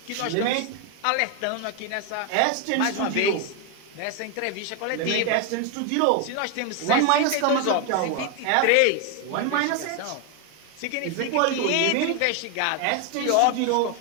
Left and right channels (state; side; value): different; both; correlation 0.01